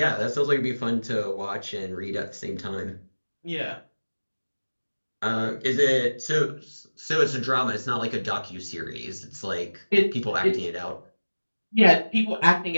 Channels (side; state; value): both; inverted; correlation -1.00